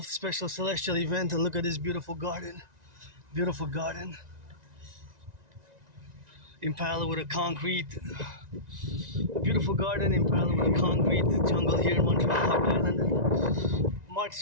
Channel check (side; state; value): left; late; 1.9 ms